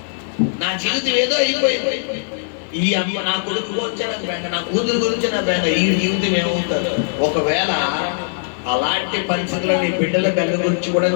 నా జీవితం ఏదో అయిపోయింది, ఈ అమ్మ నా కొడుకు గురించే నాకు బెంగ, నా కూతురు గురించి నా బెంగ, ఈ జీవితం ఏమవుతుంది? ఒకవేళ అలాంటి పరిస్థితుల్లో నీ బిడ్డల బెంగ గురించి కూడా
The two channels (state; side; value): silent; right; digital silence